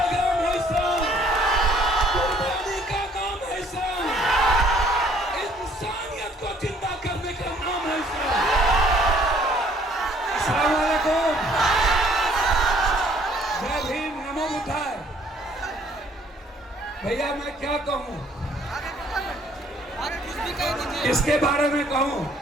है इस्लाम, कुर्बानी का नाम है इस्लाम, इंसानियत को जिंदा करने का नाम है इस्लाम। अस्सलाम वालेकुम, जय भीम, नमो बुद्धाय। भैया मैं क्या कहूँ, इसके बारे में कहूँ,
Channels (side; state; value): both; normal; correlation 0.61